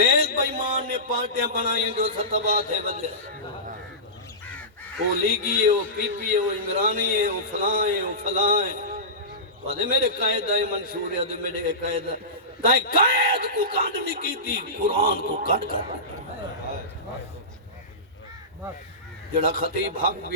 بائیمان نے پارٹیاں بنائیں جو ستبا تھے بدلے وہ لیگی ہے وہ پی پی ہے وہ عمرانی ہے وہ فلاں ہے وہ فلاں ہے وہاں میرے قائد آئے منشور ہے دے میرے قائد آئے قائد کو کانڈ نہیں کی تھی قرآن کو کٹ کر جڑا خطیب حق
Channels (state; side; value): normal; both; correlation -0.19